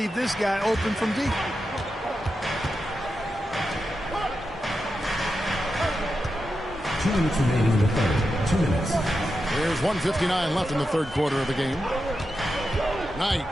this guy open from deep. Two minutes remaining in the third. 2 minutes. There's 1:59 left in the third quarter of the game. Knight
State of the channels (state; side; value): normal; both; correlation 0.89